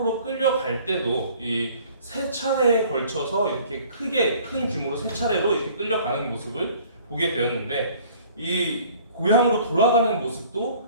끌려갈 때도 이 세 차례에 걸쳐서 이렇게 큰 규모로 세 차례로 이렇게 끌려가는 모습을 보게 되었는데 이 고향으로 돌아가는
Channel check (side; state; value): both; inverted; correlation -0.53